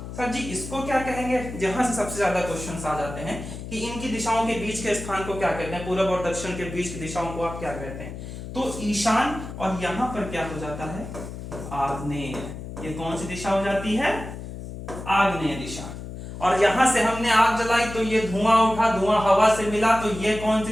सर जी इसको क्या कहेंगे? जहां से सबसे ज्यादा क्वेश्चंस आ जाते हैं कि इनकी दिशाओं के बीच के स्थान को क्या कहते हैं, पूरब और दक्षिण के बीच की दिशाओं को आप क्या कहते हैं? तो ईशान, और यहां पर क्या हो जाता है, आग्नेय। ये कौन सी दिशा हो जाती है, आग्नेय दिशा। और यहां से हमने आग जलाई तो ये धुआं उठा, धुआं हवा से मिला तो ये कौन सी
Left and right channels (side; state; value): left; noise; hum, 10 dB below the sound